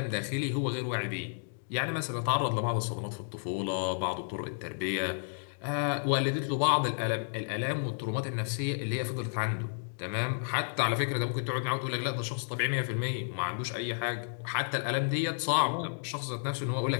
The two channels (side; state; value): right; silent; digital silence